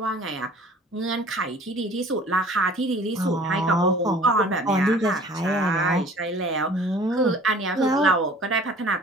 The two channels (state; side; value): normal; both; correlation 0.48